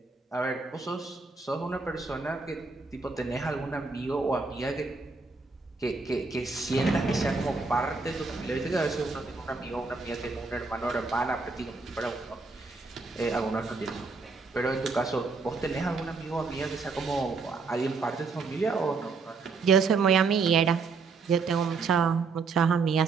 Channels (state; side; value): quieter; left; 4.4 dB